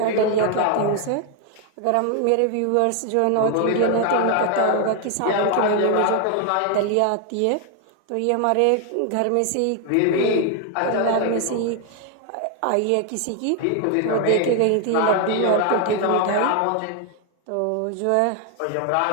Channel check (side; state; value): both; different; correlation 0.01